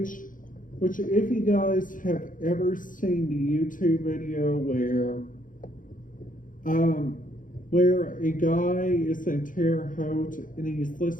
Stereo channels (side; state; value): right; late; 0.39 ms